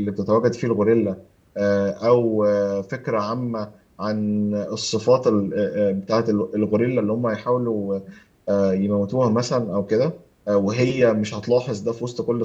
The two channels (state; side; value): identical; both; correlation 1.00